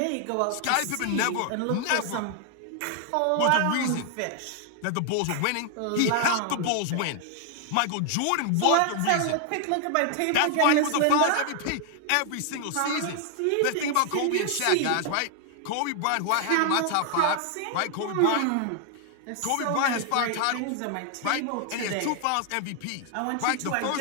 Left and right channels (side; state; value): both; different; correlation 0.00